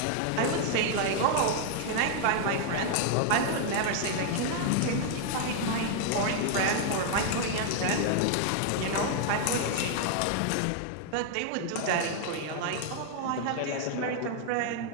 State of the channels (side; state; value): both; different; correlation 0.00